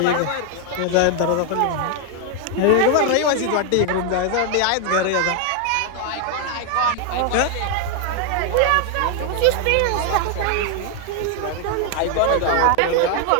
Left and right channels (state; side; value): different; both; correlation 0.01